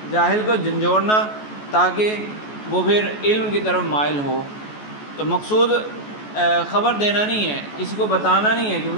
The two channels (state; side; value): late; right; 14 ms